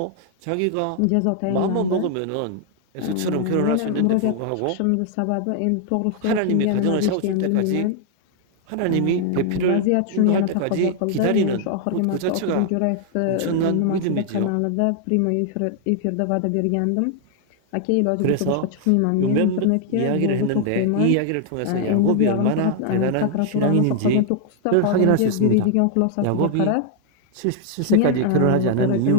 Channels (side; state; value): both; different; correlation 0.00